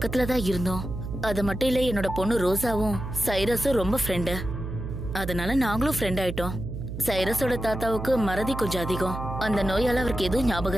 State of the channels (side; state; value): right; noise; hum, 7 dB below the sound